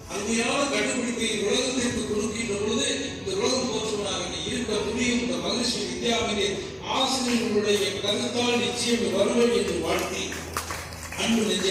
அருமையான கண்டுபிடிப்பை உலகத்திற்கு கொடுக்கின்ற பொழுது இந்த உலகம் போற்றுவனாக இருக்க முடியும். இந்த மகிழ்ச்சி வித்யாவிலே ஆசிரியர்களுடைய கருத்தால் நிச்சயம் வருவேன் என்று வாழ்த்தி, அன்பு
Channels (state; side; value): identical; both; correlation 1.00